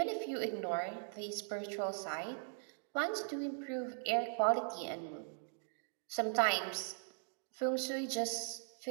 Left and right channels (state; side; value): silent; left; digital silence